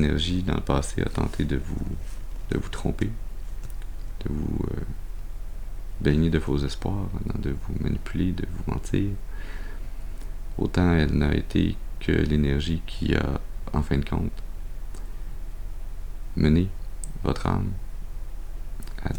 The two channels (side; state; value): both; identical; correlation 1.00